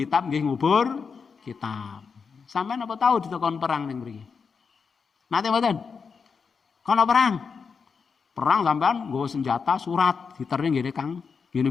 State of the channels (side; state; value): right; quieter; 5.6 dB